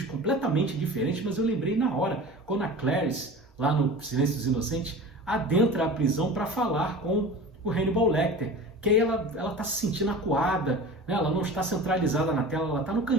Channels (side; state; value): both; normal; correlation 0.36